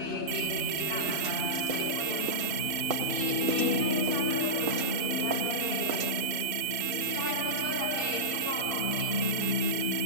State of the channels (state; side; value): late; left; 2.6 ms